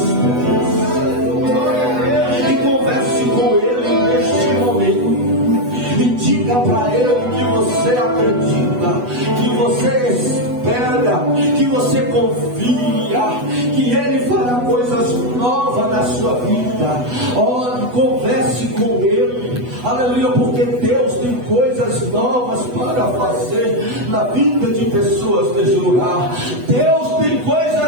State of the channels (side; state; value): left; late; 8.1 ms